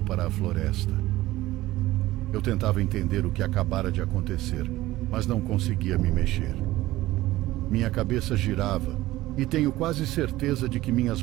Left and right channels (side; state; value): left; quieter; 16.8 dB